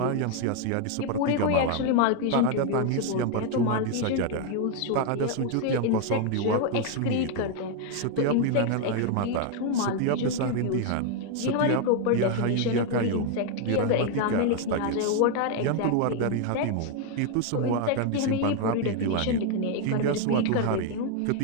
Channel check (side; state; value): both; different; correlation 0.00